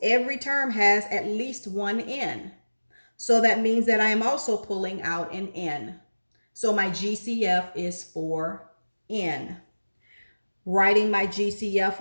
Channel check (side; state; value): both; inverted; correlation -1.00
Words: Every term has at least one n. So that means that I am also pulling out an n. So my GCF is 4n. Writing my GCF